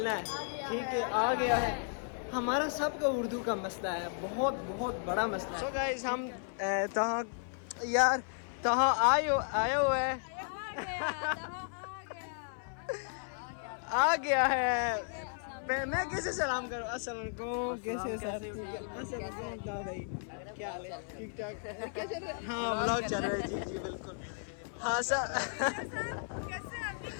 है। ठीक है, आ गया है। हमारा सबका उर्दू का मसला है, बहुत बहुत बड़ा मसला है। सो गाइस हम तहाँ आए हुए हैं। आ गया है। मैं कैसे सलाम करूँ? अस्सलाम वालेकुम। कैसे सर? अस्सलाम वालेकुम भाई, क्या हाल है? ठीक ठाक? क्या चल रहा है? हाँ व्लॉग चल रहा है। जी जी बिल्कुल। हाँ सर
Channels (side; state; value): right; silent; 55 dB below the other